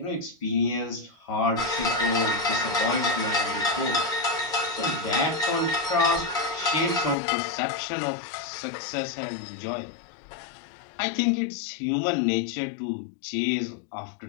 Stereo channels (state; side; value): drops out; right; at 7.2 s